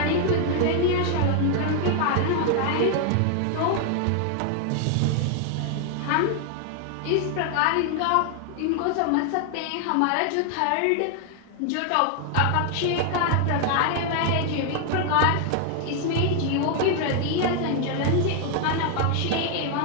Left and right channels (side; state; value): both; different; correlation 0.00